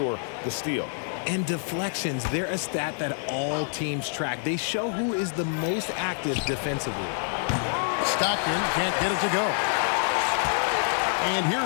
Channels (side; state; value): right; silent; 60 dB below the other